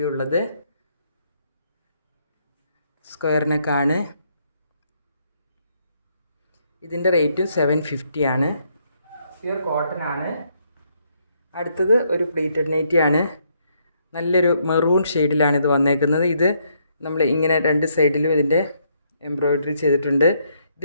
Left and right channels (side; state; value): both; inverted; correlation -0.73